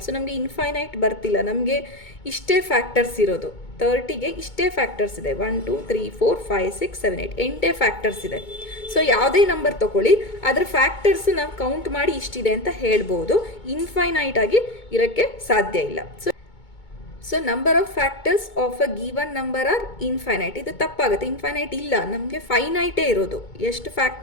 So ನಮಗೆ ಇನ್ಫೈನೈಟ್ ಬರ್ತಿಲ್ಲ, ನಮಗೆ ಇಷ್ಟೇ ಫ್ಯಾಕ್ಟರ್ಸ್ ಇರೋದು. 30ಗೆ ಇಷ್ಟೇ ಫ್ಯಾಕ್ಟರ್ಸ್ ಇದೆ. 1 2 3 4 5 6 7 8 8 ಫ್ಯಾಕ್ಟರ್ಸ್ ಇದೆ. ಸೊ ಯಾವುದೇ ನಂಬರ್ ತೊಗೊಳ್ಳಿ, ಅದರ ಫ್ಯಾಕ್ಟರ್ಸ್ ನಾವು ಕೌಂಟ್ ಮಾಡಿ ಇಷ್ಟಿದೆ ಅಂತ ಹೇಳ್ಬೋದು. ಇನ್ಫೈನೈಟ್ ಆಗಿ ಇರೋಕ್ಕೆ ಸಾಧ್ಯ ಇಲ್ಲ. So number of factors of a given number are infinite. ಇದು ತಪ್ಪಾಗುತ್ತೆ. ಇನ್ಫೈನೈಟ್ ಇಲ್ಲ, ನಮಗೆ ಫೈನೈಟೇ ಇರೋದು. ಎಷ್ಟು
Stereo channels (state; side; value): late; right; 2.2 ms